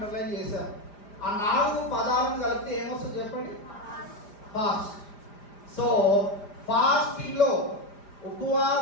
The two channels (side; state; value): right; late; 4.9 ms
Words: చేశాను. ఆ 4 పదాలను కలిపితే ఏమొస్తుంది చెప్పండి? ఫాస్ట్. సో ఫాస్టింగ్ లో,